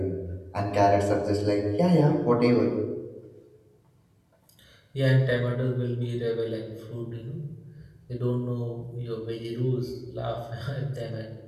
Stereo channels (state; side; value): identical; both; correlation 1.00